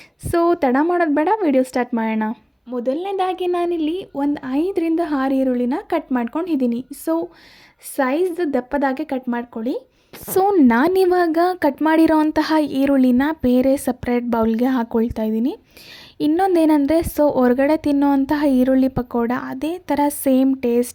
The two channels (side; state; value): both; identical; correlation 1.00